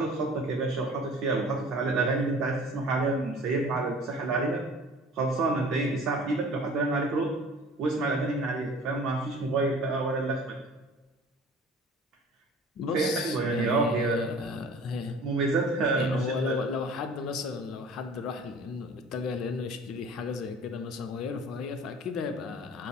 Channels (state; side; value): normal; both; correlation 0.46